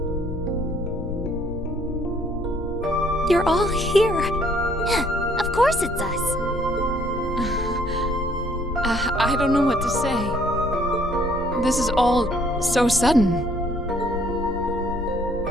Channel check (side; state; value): both; normal; correlation 0.63